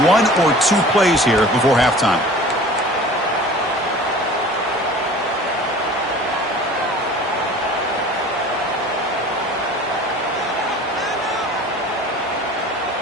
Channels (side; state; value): both; normal; correlation 0.43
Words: or 2 plays here before halftime.